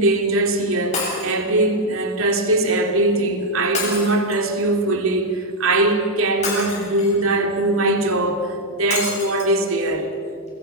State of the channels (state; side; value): normal; both; correlation 0.00